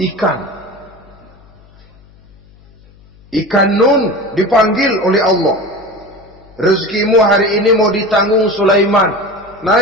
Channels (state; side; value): noise; left; hum, 27 dB below the sound